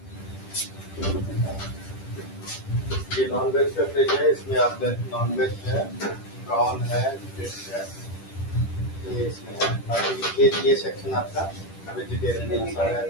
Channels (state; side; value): late; right; 10 ms